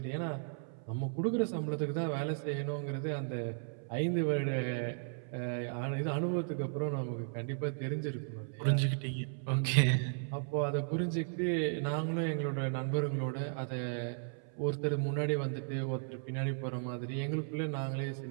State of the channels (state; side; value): silent; left; 54 dB below the other